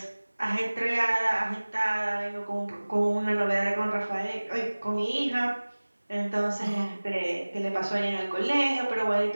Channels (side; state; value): both; inverted; correlation -1.00